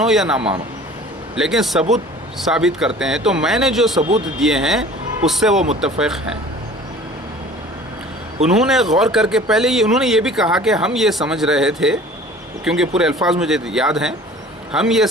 یا نہ مانو، لیکن ثبوت ثابت کرتے ہیں. تو میں نے جو ثبوت دیے ہیں اس سے وہ متفق ہیں. انہوں نے غور کر کے پہلے انہوں نے یہ بھی کہا کہ ہم یہ سمجھ رہے تھے، کیونکہ پورے الفاظ مجھے یاد ہیں، ہم یہ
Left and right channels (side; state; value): both; normal; correlation 0.46